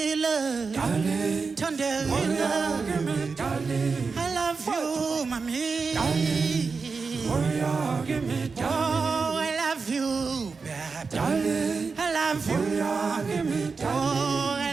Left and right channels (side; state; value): left; quieter; 4.8 dB